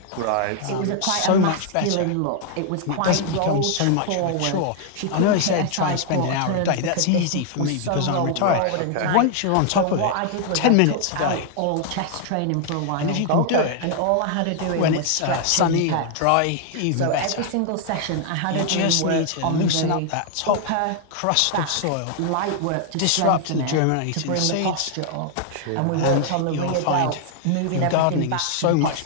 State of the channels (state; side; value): different; both; correlation 0.00